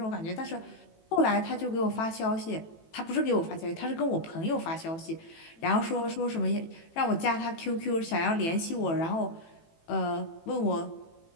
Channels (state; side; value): late; right; 18 ms